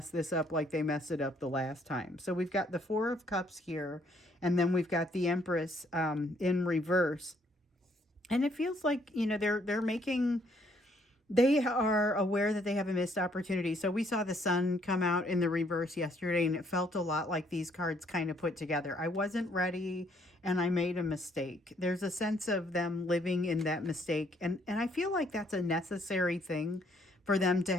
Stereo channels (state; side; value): normal; both; correlation 0.67